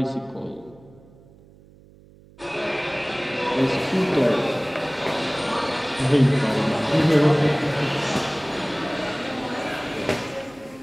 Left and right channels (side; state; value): right; noise; hum, 25 dB below the sound